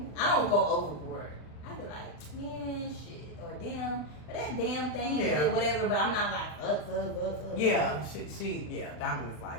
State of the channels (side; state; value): right; late; 40 ms